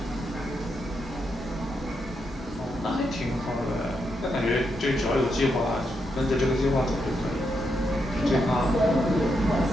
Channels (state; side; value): normal; both; correlation 0.82